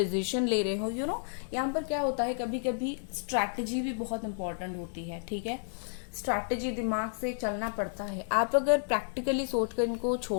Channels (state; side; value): silent; right; 57 dB below the other